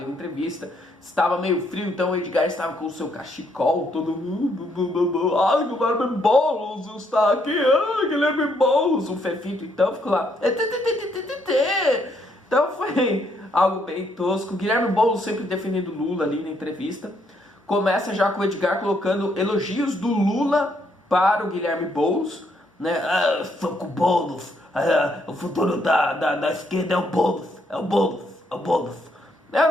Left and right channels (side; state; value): both; normal; correlation 0.73